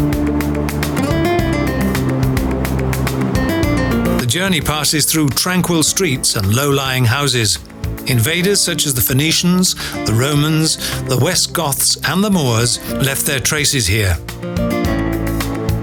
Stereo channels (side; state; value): both; identical; correlation 1.00